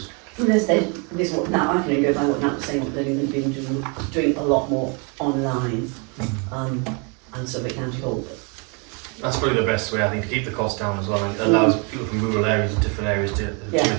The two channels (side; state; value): left; quieter; 34.1 dB